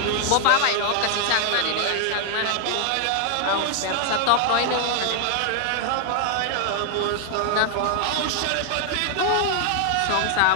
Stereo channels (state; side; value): different; both; correlation 0.00